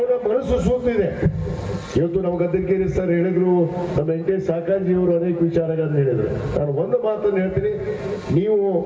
ಮನಸ್ಸು ಸೂತಿದೆ. ಇವತ್ತು ನಮ್ಮ ಗದ್ದೆಗೇರಿ ಸರ್ ಹೇಳಿದ್ರು, ನಮ್ಮ ವೆಂಕಟೇಶ್ ಸಾಕಾಜಿ ಅವರು ಅನೇಕ ವಿಚಾರಗಳನ್ನು ಹೇಳಿದ್ರು. ನಾನು ಒಂದು ಮಾತನ್ನು ಹೇಳ್ತೀನಿ, ನೀವು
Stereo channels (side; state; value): both; identical; correlation 1.00